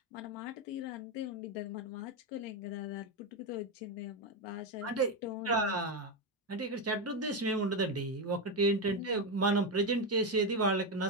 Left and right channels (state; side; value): normal; both; correlation 0.10